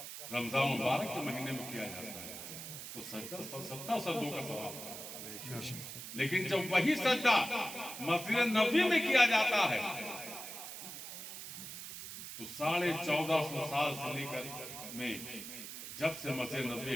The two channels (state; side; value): noise; right; hiss, 9 dB below the sound